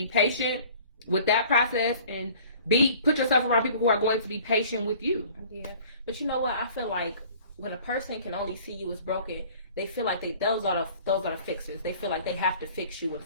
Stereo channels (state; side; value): inverted; both; correlation -0.50